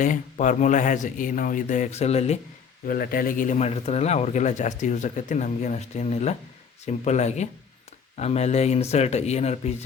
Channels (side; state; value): right; quieter; 6.6 dB